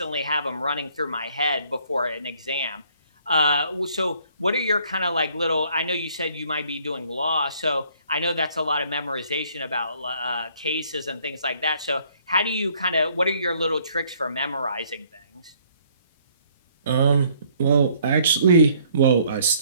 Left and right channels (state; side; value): inverted; both; correlation -0.62